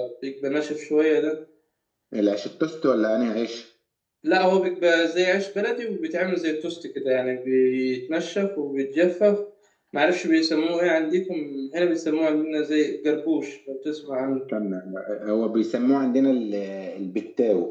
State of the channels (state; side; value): identical; both; correlation 1.00